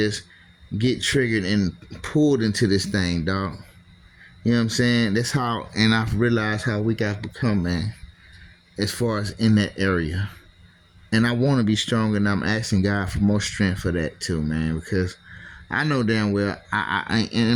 get triggered and pulled into this thing, dog. You know what I'm saying? That's how, and I've realized how weak I've become, man, as far as in that area. And I want to be stronger, and I'm asking God for more strength for that too, man, because I know damn well, I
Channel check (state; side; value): identical; both; correlation 1.00